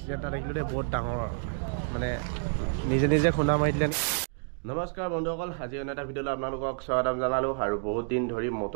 এটা দেখিলোঁ দেই বহুত ডাঙৰ মানে নিজে খুন্দা মাৰি দিলে নমস্কাৰ বন্ধুসকল আজি অন্য এটা ভিডিঅ'লৈ আপোনালোকক স্বাগতম জনালোঁ আৰু বহুত দিন ধৰি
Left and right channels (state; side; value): silent; left; digital silence